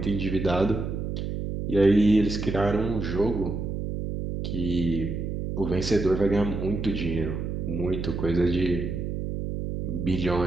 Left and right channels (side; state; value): right; noise; hum, 4 dB below the sound